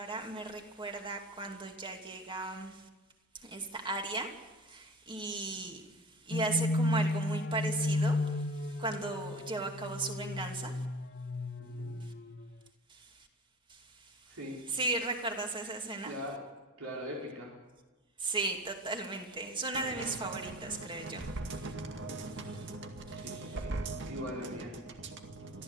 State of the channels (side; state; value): both; normal; correlation 0.38